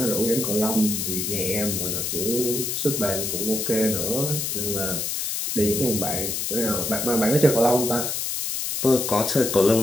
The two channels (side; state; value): left; noise; hiss, 2 dB below the sound